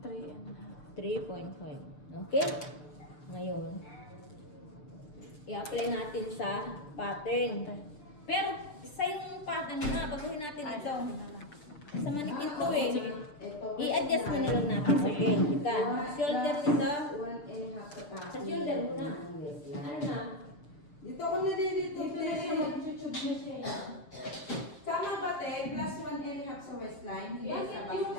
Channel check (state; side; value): late; right; 7.0 ms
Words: 3 and a half. 3.5. Okay? Ngayon, i-apply natin sa pattern. Pero sa yung pattern na, baguhin natin ito. Sa manikin to eh. Ito. I-adjust mo na lang natin. Okay, ka. Shoulder nito. 1.5 sa tax. Sa shoulder muna. Ano na? Dito ako nalilito. Tama ba, te? Plus 1.5 sa waistline, hindi sa